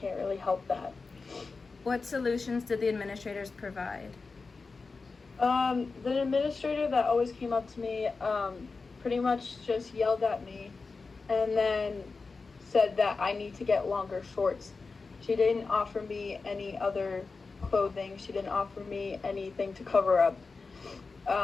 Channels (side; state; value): right; quieter; 4.2 dB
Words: really help that. What solutions did the administrators provide? The administrator that always came up to me, pretty much just yelled at me and then said that I need to get longer shorts. She didn't offer me any other clothing. She didn't offer me anything to cover up.